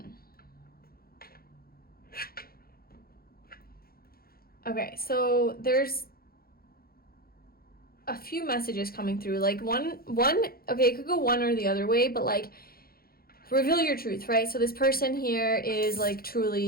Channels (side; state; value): right; late; 0.44 ms